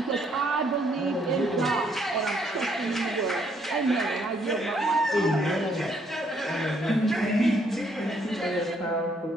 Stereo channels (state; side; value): normal; both; correlation 0.69